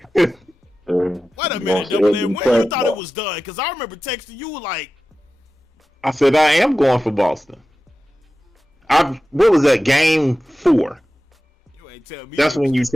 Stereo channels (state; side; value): normal; both; correlation 0.94